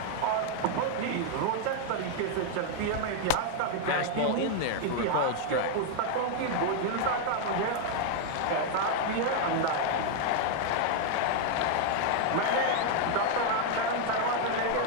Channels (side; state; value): both; different; correlation 0.00